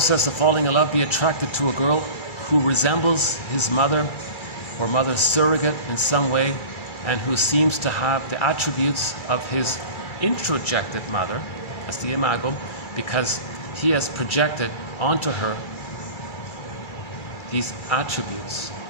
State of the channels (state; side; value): late; right; 2.3 ms